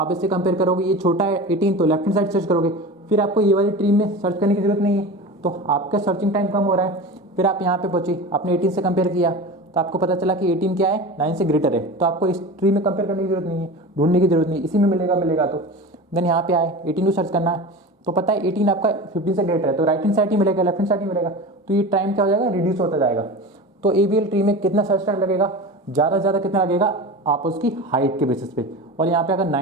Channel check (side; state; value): both; normal; correlation 0.31